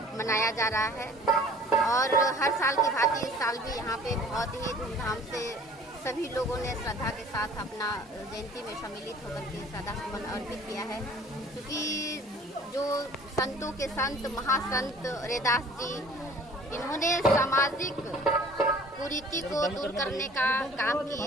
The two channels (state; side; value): normal; both; correlation 0.49